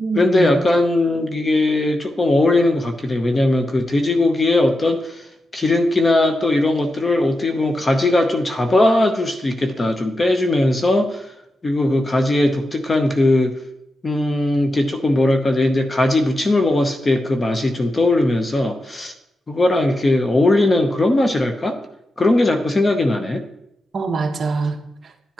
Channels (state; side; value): normal; both; correlation 0.89